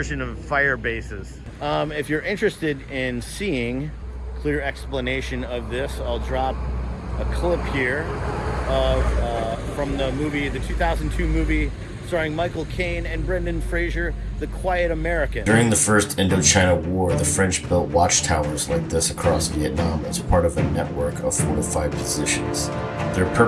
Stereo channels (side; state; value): both; identical; correlation 1.00